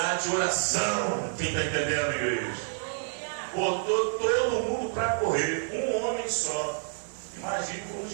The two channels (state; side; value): silent; left; 59 dB below the other